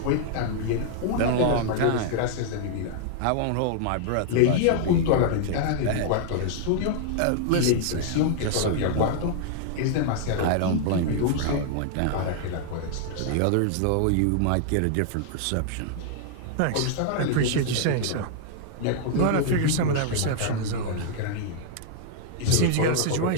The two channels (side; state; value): both; different; correlation -0.01